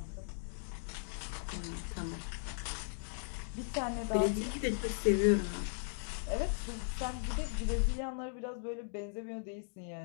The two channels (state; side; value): silent; right; digital silence